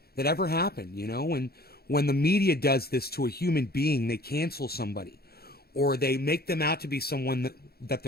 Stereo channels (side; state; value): right; late; 0.45 ms